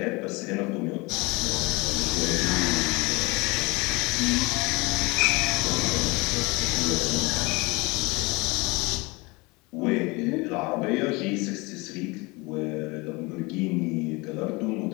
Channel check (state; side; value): quieter; right; 25.3 dB